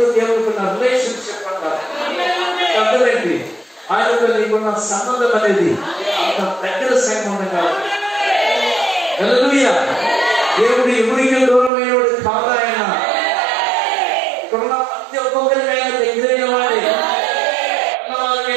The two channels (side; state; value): left; drops out; at 11.7 s